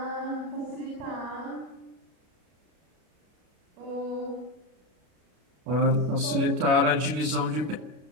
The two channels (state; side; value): late; left; 33 ms